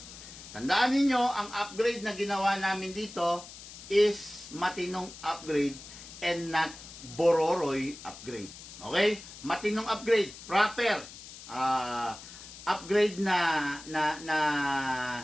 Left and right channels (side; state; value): left; noise; hiss, 15 dB below the sound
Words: Tandaan ninyo, ang upgrade na ginawa namin dito is matinong upgrade and not bororoy upgrade. Okay? Matinong upgrade, proper. Upgrade na